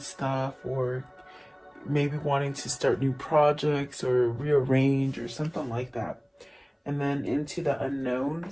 or maybe wanting to start new projects or rearrange or something like that. And then into the unknown.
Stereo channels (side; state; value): both; identical; correlation 1.00